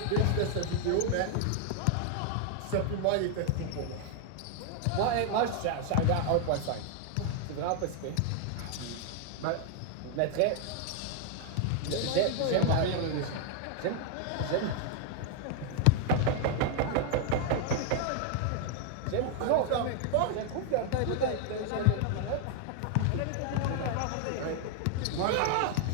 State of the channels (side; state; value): both; different; correlation 0.00